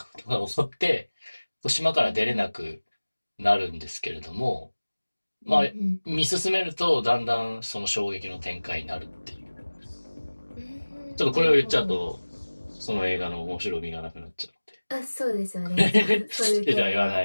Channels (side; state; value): both; inverted; correlation -1.00